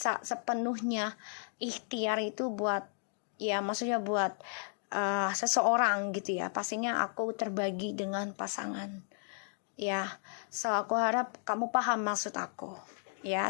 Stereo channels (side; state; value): right; silent; 55 dB below the other